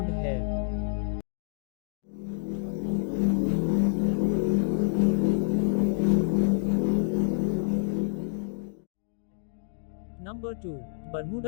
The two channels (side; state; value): right; silent; digital silence